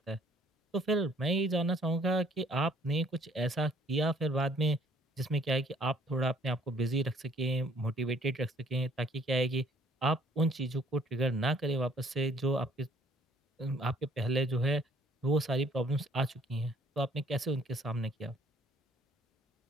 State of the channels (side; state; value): both; normal; correlation 0.60